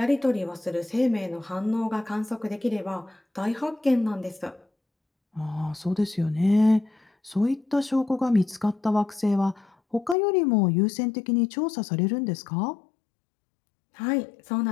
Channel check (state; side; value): drops out; right; at 10.2 s